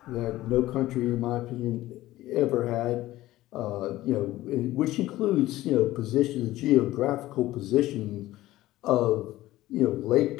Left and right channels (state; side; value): quieter; right; 16.2 dB